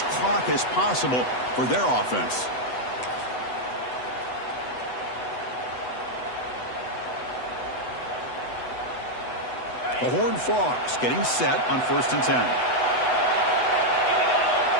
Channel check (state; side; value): late; right; 8.0 ms